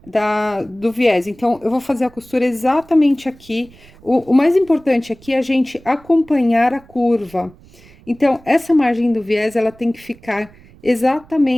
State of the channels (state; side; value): noise; right; rumble, 25 dB below the sound